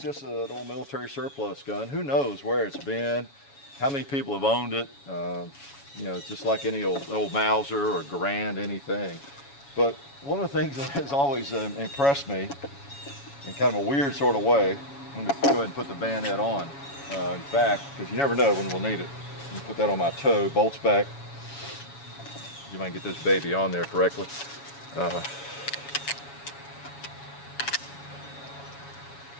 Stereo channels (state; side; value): late; right; 7.2 ms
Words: an old military surplus gun. Who knows where it's been, how many people have owned it. You know, just like any old Mauser or Garand, anything. But one of the things that has always impressed me in kind of a weird sort of way, I'm going to go ahead and put the bayonet on. In fact, because you never know when we'll need it. Let me put that on my toe, bolts back. You might get this baby on there correctly.